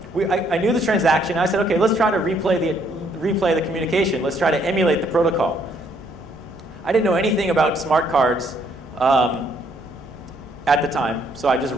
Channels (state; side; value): normal; both; correlation 0.68